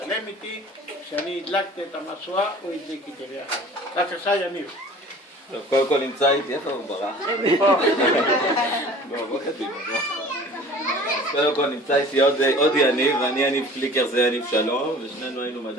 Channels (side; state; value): both; normal; correlation 0.45